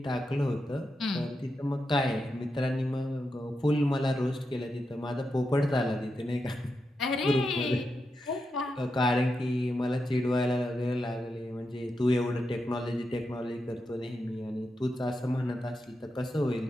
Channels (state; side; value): normal; both; correlation 0.87